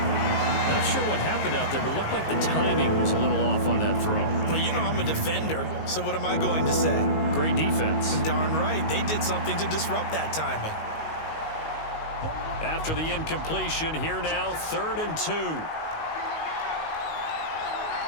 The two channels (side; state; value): right; late; 19 ms